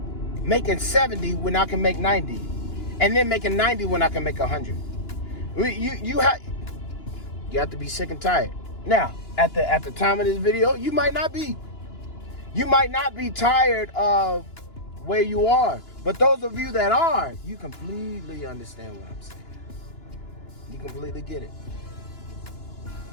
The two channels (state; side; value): late; right; 2.9 ms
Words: making 70 when I can make 90, and then making 90 when I can make 100. You have to be sick and tired. Now, at the time of this video, you might not be. You might not be tired of where you are. But those of you that are, you completely understand what I'm saying. You completely get it.